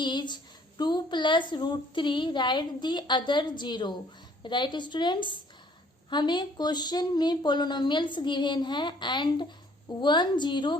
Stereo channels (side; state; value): both; normal; correlation 0.60